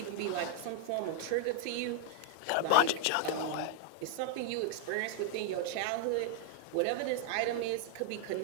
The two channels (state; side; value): different; both; correlation -0.01